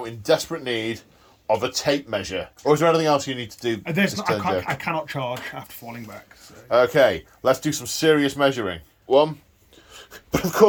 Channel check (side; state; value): both; identical; correlation 1.00